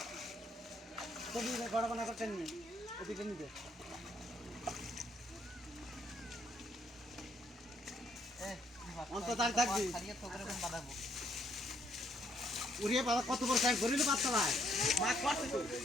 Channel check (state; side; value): normal; both; correlation 0.70